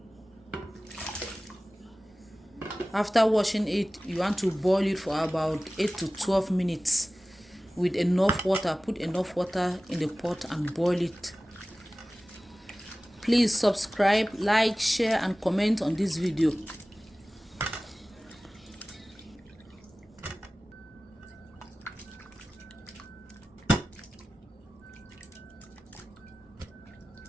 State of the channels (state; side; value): normal; both; correlation 0.97